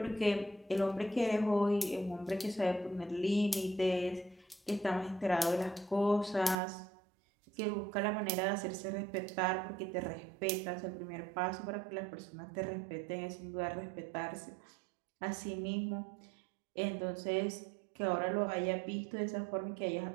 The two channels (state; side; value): drops out; left; at 6.6 s